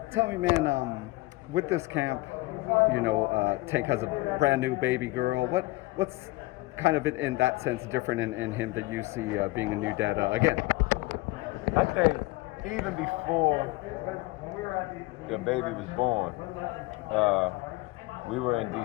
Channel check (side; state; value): right; quieter; 20.9 dB